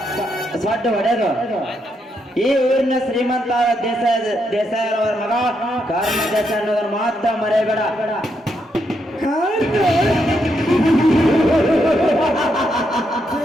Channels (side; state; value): both; normal; correlation 0.79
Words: ಸೊಡ್ಡು ಹೊಡೆದು ಈ ಊರಿನ ಶ್ರೀಮಂತ ದೇಸಾಯಿ ಅವರ ಮಗ ಕರ್ಮ ದೇಸಾಯಿ ಅನ್ನೋದನ್ನು ಮಾತ್ರ ಮರೆಯಬೇಡ.